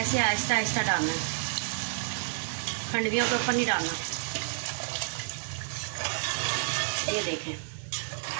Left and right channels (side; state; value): left; silent; 56 dB below the other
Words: आहिस्ता आहिस्ता डालना है, खंडवियों के ऊपर नहीं डालना। ये देखें,